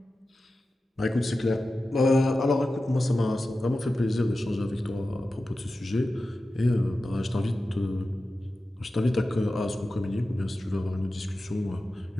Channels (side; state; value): both; normal; correlation 0.94